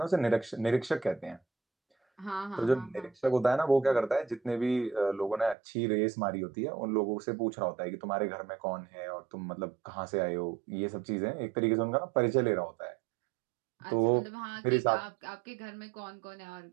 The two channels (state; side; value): drops out; left; at 5.6 s